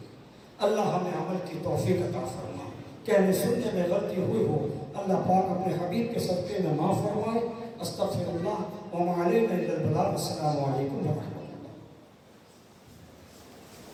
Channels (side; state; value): both; identical; correlation 1.00